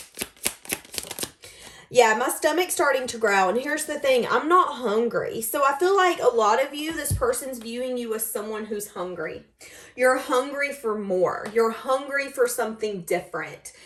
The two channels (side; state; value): both; identical; correlation 1.00